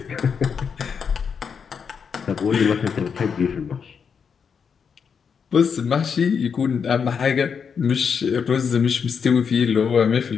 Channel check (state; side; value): quieter; right; 6.5 dB